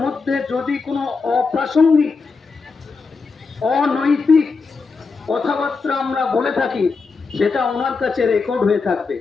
মধ্যে যদি কোনো অপ্রাসঙ্গিক অনৈতিক কথাবার্তা আমরা বলে থাকি, সেটা ওনার কাছে রেকর্ড হয়ে থাকবে।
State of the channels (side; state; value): right; quieter; 4.6 dB